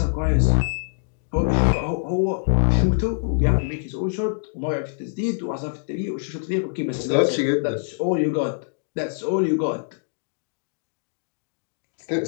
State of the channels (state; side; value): silent; right; digital silence